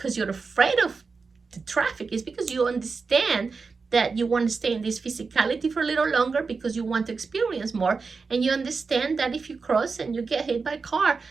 you're afraid of the traffic, it's because you understand that you want to stay in this physicality for a little longer because you want to experience more, and you understand that if you cross and you get hit by a car,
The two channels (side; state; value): left; quieter; 4.7 dB